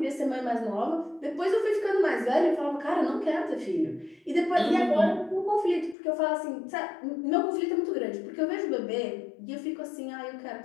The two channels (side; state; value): right; drops out; at 6.0 s